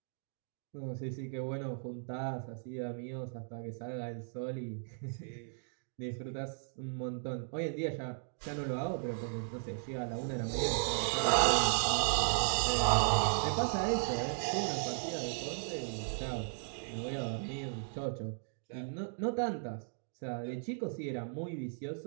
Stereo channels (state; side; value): silent; left; digital silence